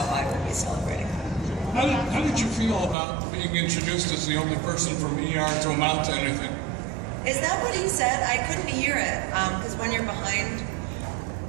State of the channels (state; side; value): drops out; left; at 3.0 s